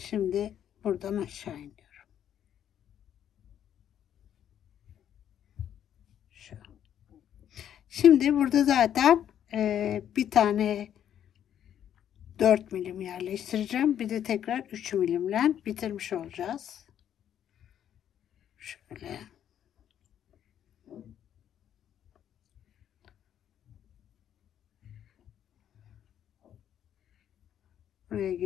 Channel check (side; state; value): right; quieter; 10.0 dB